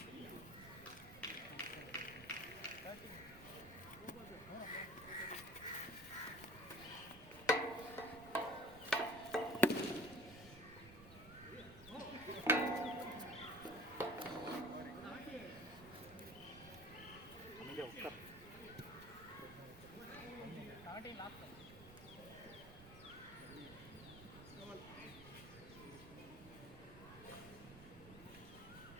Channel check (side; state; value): right; noise; rumble, 15 dB below the sound